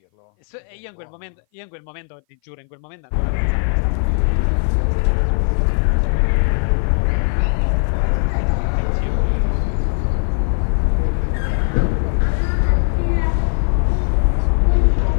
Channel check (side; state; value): right; silent; 58 dB below the other